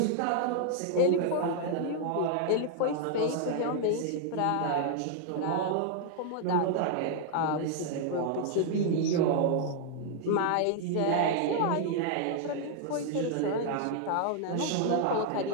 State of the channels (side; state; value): both; different; correlation 0.00